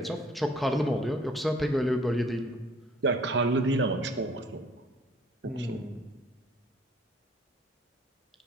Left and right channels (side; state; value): both; normal; correlation 0.57